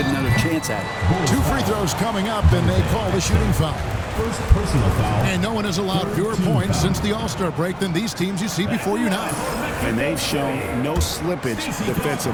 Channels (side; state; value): both; identical; correlation 1.00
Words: another chance at it. 2 free throws coming up, and they call the shooting foul. first personal foul. And no one has allowed fewer points since the All-Star break than these teams you see before you now. And they've shown no slippage